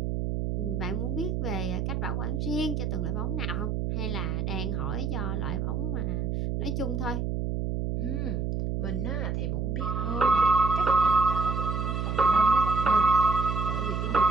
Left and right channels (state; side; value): noise; right; hum, 1 dB below the sound